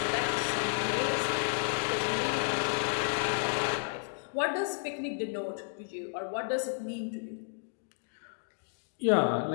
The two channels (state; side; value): silent; right; digital silence